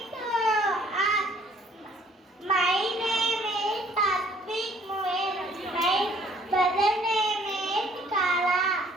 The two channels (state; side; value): normal; both; correlation 0.60